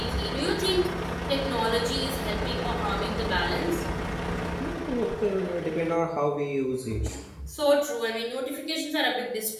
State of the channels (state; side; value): identical; both; correlation 1.00